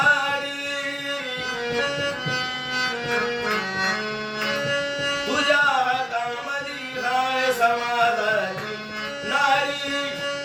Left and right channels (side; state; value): both; identical; correlation 1.00